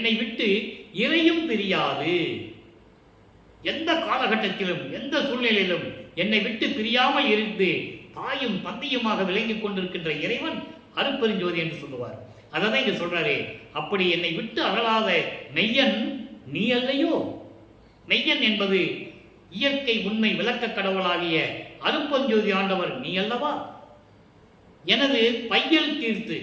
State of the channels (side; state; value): both; identical; correlation 1.00